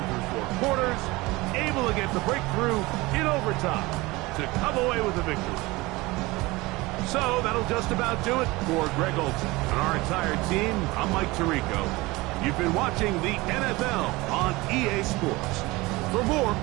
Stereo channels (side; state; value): left; quieter; 21.7 dB